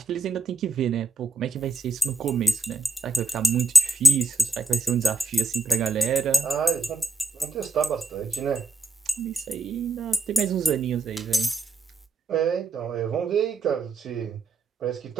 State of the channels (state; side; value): quieter; left; 3.4 dB